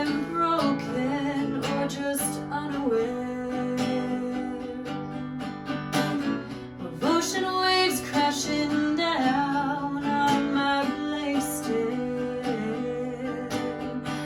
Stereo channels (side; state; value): both; identical; correlation 1.00